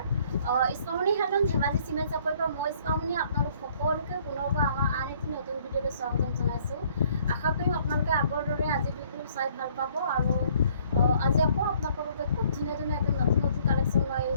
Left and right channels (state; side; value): inverted; both; correlation -0.61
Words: ইছমামণি handloom Dhemaji cement চাপৰিৰ পৰা মই ইছমামণি আপোনালোক সকলোকে পুনৰবাৰ আমাৰ আন এটি নতুন ভিডিঅ'লৈ স্বাগতম জনাইছোঁ। আশা কৰিম আপোনালোকে আগৰ দৰে আজি ভিডিঅ' চাই ভাল পাব আৰু আজি আকৌ আপোনালোকৰ বাবে খুব ধুনীয়া একদম নতুন কালেকশ্যন লৈ